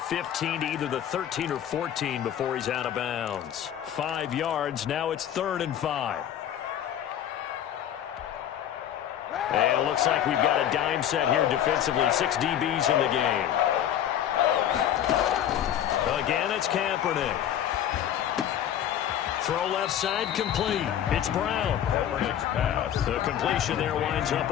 to either the 13 or 14 before he's out of bounds. 5 yards. Now it's 3rd and 5. And it looks like we've got a dime set here defensively. 6 DBs in the game. Again, it's Kaepernick. Throw left side, complete. It's Brown. Kaepernick's pass. The completion there winds up a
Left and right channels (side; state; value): right; quieter; 10.5 dB